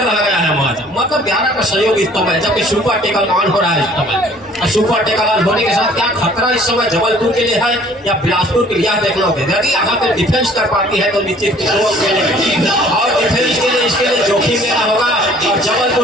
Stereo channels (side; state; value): both; normal; correlation 0.55